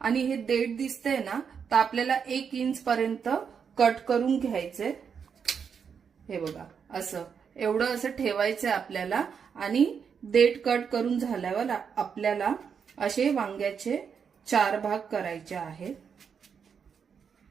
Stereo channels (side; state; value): left; quieter; 6.7 dB